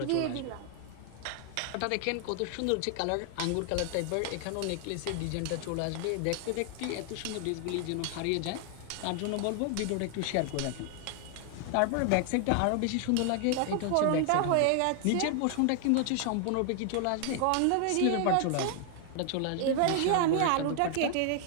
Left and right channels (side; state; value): both; different; correlation 0.00